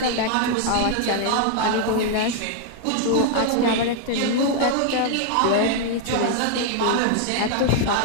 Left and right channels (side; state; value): both; different; correlation 0.00